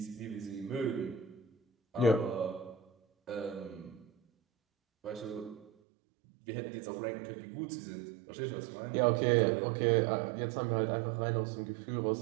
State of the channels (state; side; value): drops out; left; at 5.7 s